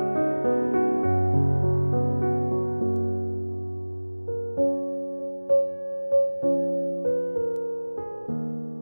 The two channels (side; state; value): both; inverted; correlation -1.00